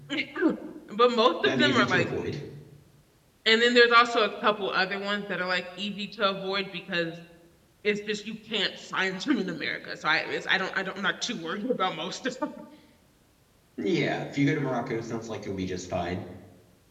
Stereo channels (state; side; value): identical; both; correlation 1.00